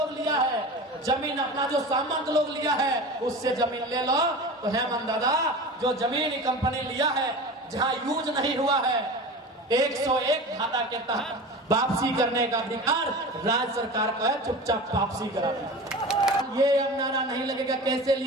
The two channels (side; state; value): both; normal; correlation 0.33